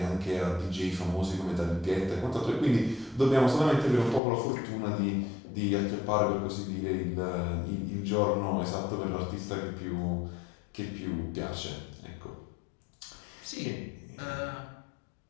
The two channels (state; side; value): drops out; right; at 4.2 s